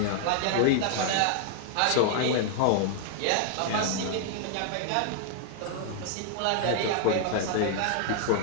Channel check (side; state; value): both; different; correlation 0.00